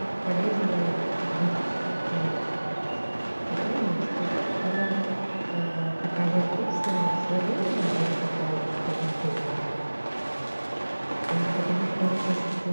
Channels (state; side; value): inverted; both; correlation -1.00